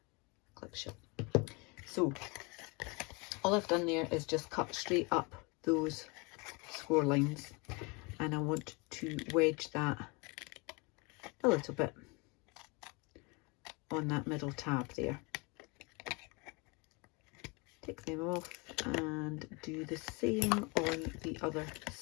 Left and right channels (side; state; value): right; quieter; 28.7 dB